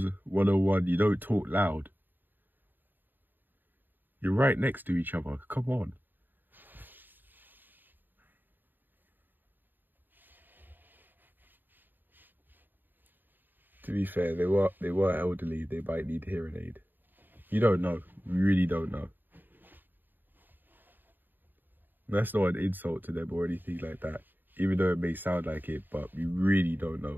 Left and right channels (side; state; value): left; late; 0.091 ms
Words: 101. You don't talk loud. You're right next to each other. Come on. To be fair, they were elderly. They might need hearing aid. You don't know. You really don't know. That's not an insult to them or anything like that, even though it may sound like it, but we really don't